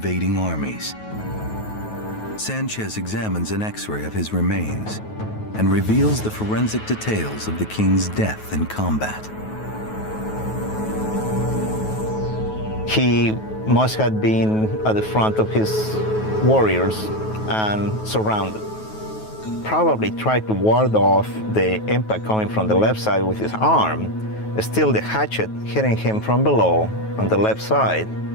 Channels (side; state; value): right; late; 9.3 ms